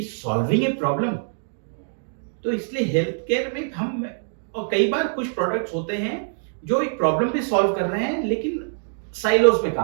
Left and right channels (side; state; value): left; silent; digital silence